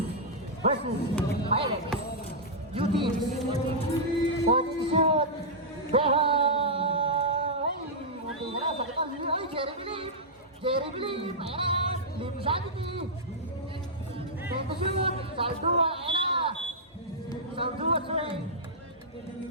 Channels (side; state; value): both; normal; correlation -0.10